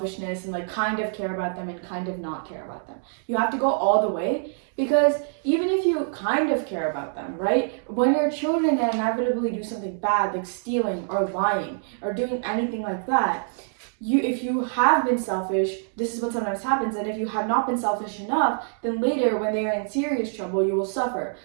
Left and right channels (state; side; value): silent; left; digital silence